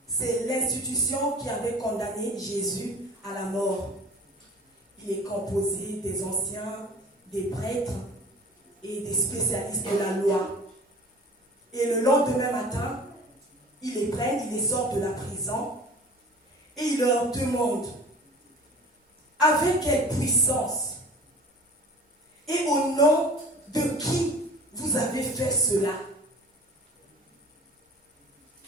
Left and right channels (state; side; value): normal; both; correlation 0.43